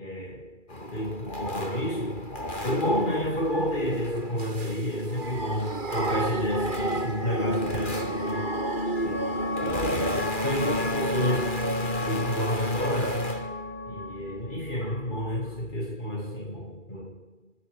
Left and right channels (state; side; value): late; right; 2.4 ms